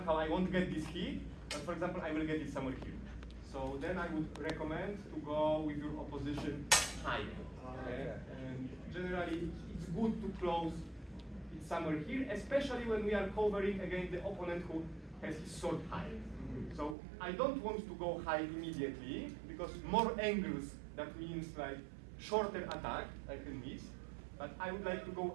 I won't get this hit, but for example, I will get it somewhere here. So then I would recommend to go with your opposition higher. Okay? And generally, it's good to close it somewhere here, especially when we are covering against the opponent who has his sword high. So I don't want to go high immediately, because more angles, that means like shorter attack, I can miss. But I would like to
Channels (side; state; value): left; drops out; at 16.9 s